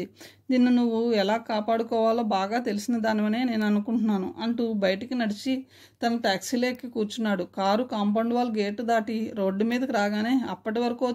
నిన్ను నువ్వు ఎలా కాపాడుకోవాలో బాగా తెలిసిన దానివనే నేను అనుకుంటున్నాను అంటూ బయటికి నడిచి తన టాక్సీలోకి కూర్చున్నాడు. కారు కాంపౌండ్ వాల్ గేటు దాటి రోడ్డు మీదకి రాగానే అప్పటి వరకు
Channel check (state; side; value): identical; both; correlation 1.00